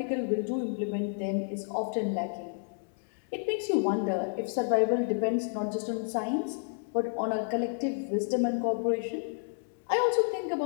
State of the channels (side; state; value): right; silent; digital silence